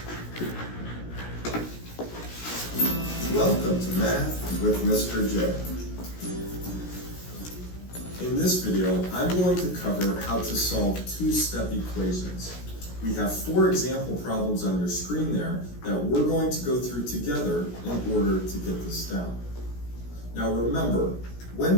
Welcome to Math with Mr. J. In this video, I'm going to cover how to solve two-step equations. We have 4 example problems on your screen there that we're going to go through together in order to get this down. Now remember,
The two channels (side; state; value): right; late; 16 ms